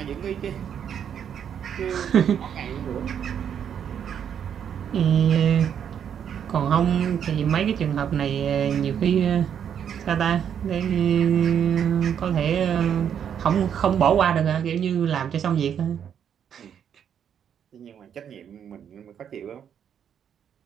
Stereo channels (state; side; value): quieter; left; 8.6 dB